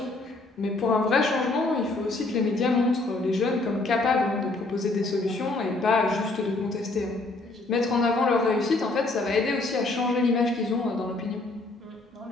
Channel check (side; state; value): right; quieter; 3.1 dB